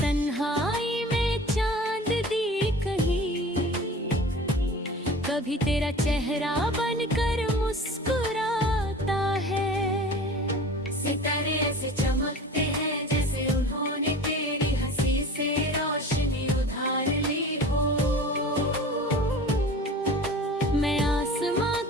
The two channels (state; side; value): normal; both; correlation 0.39